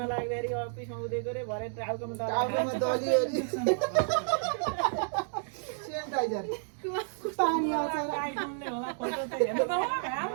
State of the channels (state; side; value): silent; left; digital silence